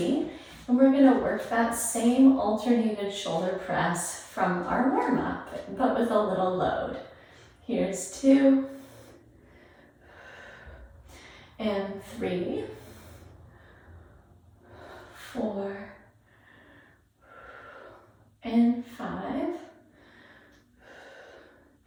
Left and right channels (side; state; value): both; identical; correlation 1.00